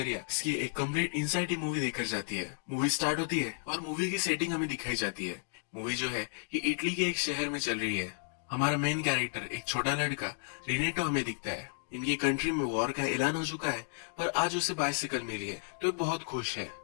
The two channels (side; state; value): right; silent; digital silence